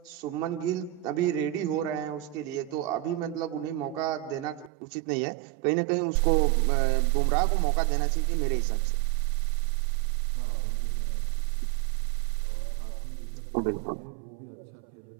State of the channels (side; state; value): left; drops out; at 4.7 s